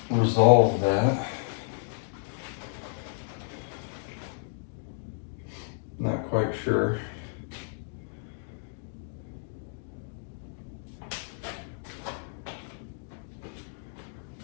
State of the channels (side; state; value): right; silent; digital silence